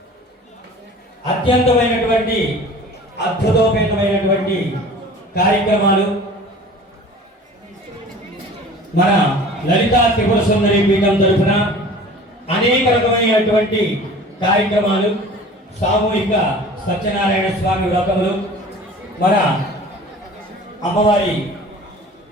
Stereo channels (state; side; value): normal; both; correlation 0.43